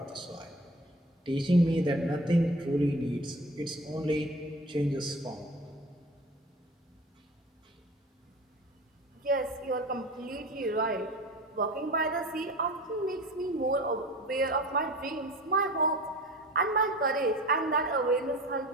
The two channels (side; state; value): both; normal; correlation 0.38